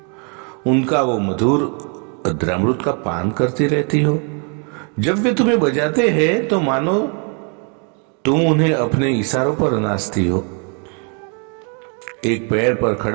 उनका वो मधुर अद्रामृत का पान करती रहती हो। जब वे तुम्हें बजाते हैं तो मानो तुम उन्हें अपने इशारों पर नाचती हो। एक पैर पर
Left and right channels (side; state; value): left; quieter; 38.2 dB